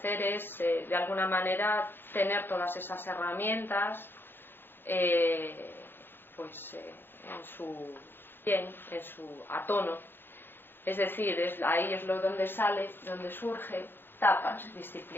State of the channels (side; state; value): right; late; 0.10 ms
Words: es de alguna manera tener todas esas herramientas en su a tono. Es decir, ahí es donde sale, donde surge tapas,